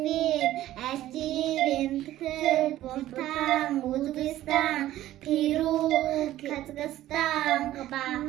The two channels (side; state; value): left; quieter; 14.1 dB